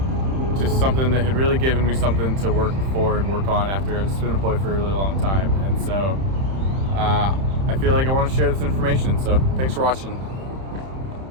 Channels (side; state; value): left; late; 31 ms